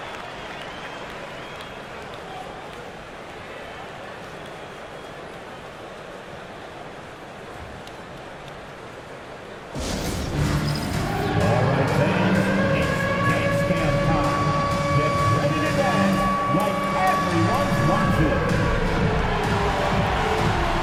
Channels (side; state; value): both; identical; correlation 1.00